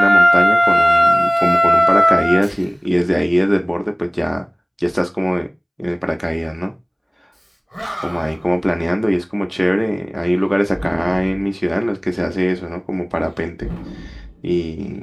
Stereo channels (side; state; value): both; identical; correlation 1.00